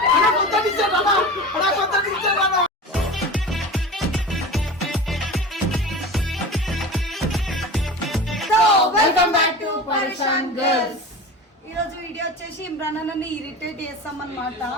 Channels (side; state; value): both; normal; correlation 0.32